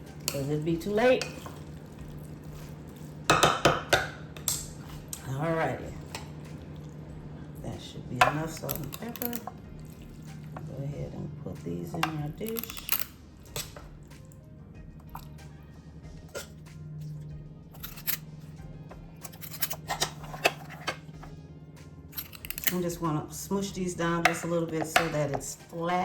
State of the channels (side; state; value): both; identical; correlation 1.00